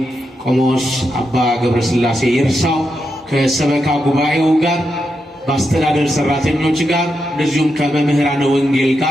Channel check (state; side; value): normal; both; correlation 0.85